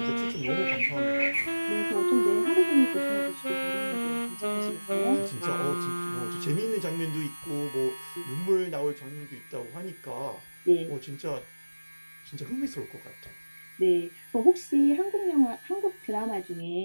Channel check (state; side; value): inverted; both; correlation -1.00